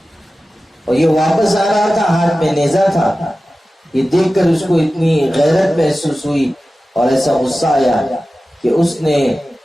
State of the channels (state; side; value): normal; both; correlation 0.95